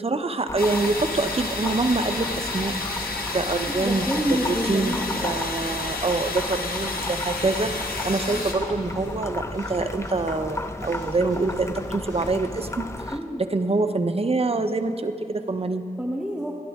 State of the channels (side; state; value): both; normal; correlation 0.63